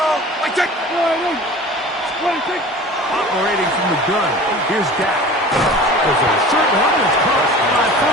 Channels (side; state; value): both; normal; correlation 0.40